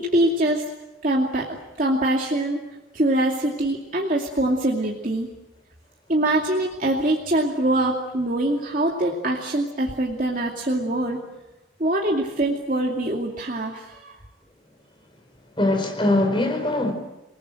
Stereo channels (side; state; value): both; normal; correlation 0.49